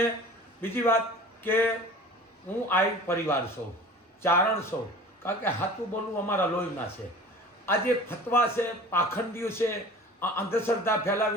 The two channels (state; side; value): normal; both; correlation 0.42